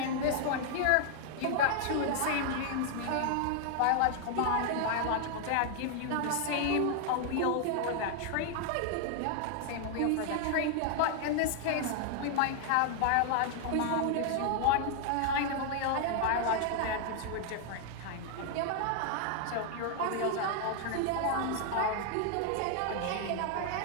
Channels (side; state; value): both; different; correlation 0.00